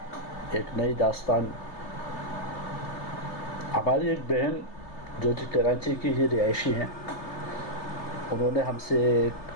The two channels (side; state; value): right; late; 3.3 ms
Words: ایک نئی داستان۔ ہماری ایک بہن جو کہ کراچی کی ہی رہائشی ہیں، انہوں نے ہم سے